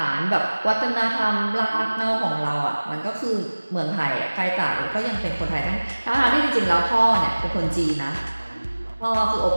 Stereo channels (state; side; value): inverted; both; correlation -1.00